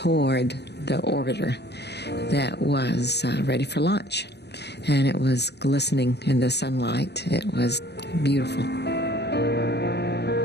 the orbiter that was ready for launch. And it was glistening in the sunlight. It was beautiful.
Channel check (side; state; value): right; late; 0.49 ms